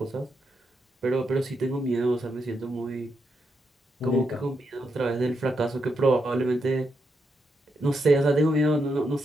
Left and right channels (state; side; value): normal; both; correlation 0.82